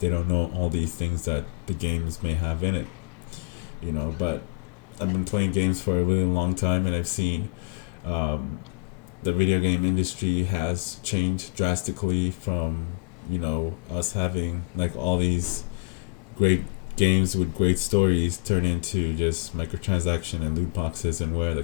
don't know all these things that the games may have in it. But I've been playing games for a really long time, and I've seen the video game industry has changed drastically from us having like all these great games with great stories turn into just microtransaction and loot boxes, and where the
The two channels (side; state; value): right; quieter; 31.6 dB